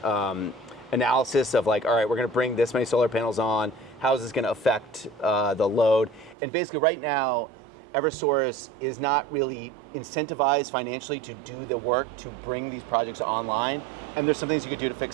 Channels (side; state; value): left; drops out; at 6.4 s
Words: analysis of like, all right, we're going to bring this many solar panels on. How is this going to affect the load? And basically right now, Eversource is not really incentivized financially to do the work to bring these projects online. And there's some things you could do to